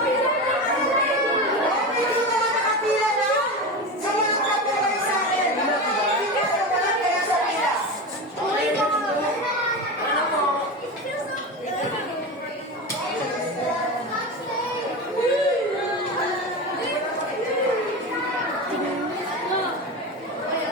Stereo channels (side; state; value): both; normal; correlation 0.23